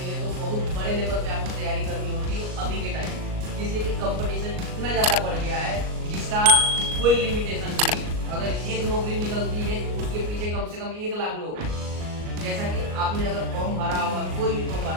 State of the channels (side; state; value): left; late; 38 ms